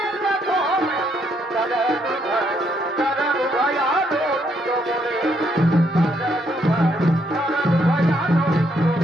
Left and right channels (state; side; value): normal; both; correlation 0.73